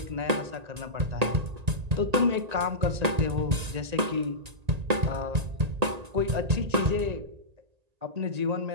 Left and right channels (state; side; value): late; left; 1.8 ms